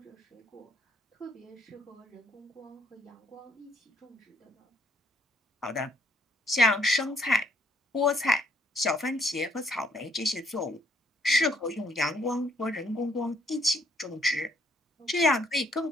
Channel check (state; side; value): normal; both; correlation 0.67